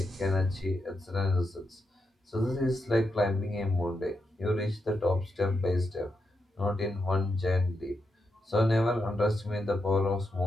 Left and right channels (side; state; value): both; normal; correlation 0.84